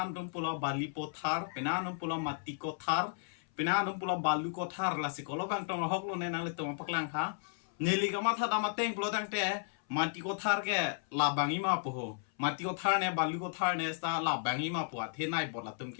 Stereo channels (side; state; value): right; silent; 55 dB below the other